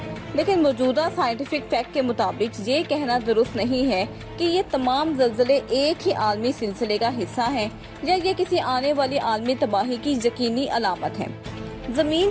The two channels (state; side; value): identical; both; correlation 1.00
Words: लेकिन मौजूदा साइंटिफिक फैक्ट के मुताबिक ये कहना दुरुस्त नहीं है कि ये तमाम ज़लज़ले एक ही आलमी सिलसिले का हिस्सा हैं या ये किसी आने वाली आलमी तबाही की यकीनी अलामत है। जमीन